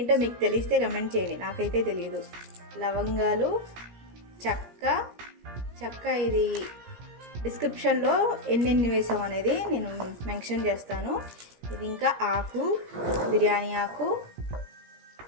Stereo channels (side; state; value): left; late; 17 ms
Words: మీకు తెలిస్తే కమెంట్ చేయండి, నాకైతే తెలియదు. లవంగాలు, చెక్క ఇది డిస్క్రిప్షన్లో ఎన్నెన్ని వేసాం అనేది నేను మెన్షన్ చేస్తాను. ఇది ఇంకా ఆకు, బిర్యానీ ఆకు,